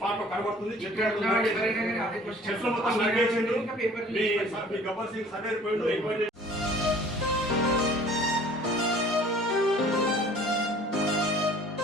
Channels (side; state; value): both; normal; correlation 0.51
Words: లో కనబడుతుంది. గబ్బర్ సింగ్ సర్వే పోయిండు.